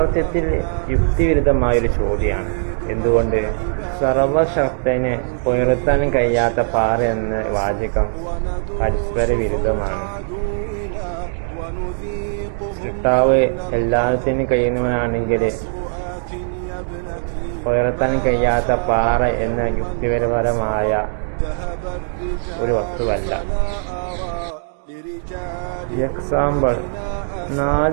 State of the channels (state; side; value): silent; left; digital silence